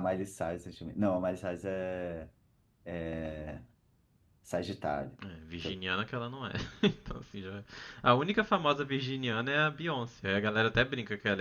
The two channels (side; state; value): both; identical; correlation 1.00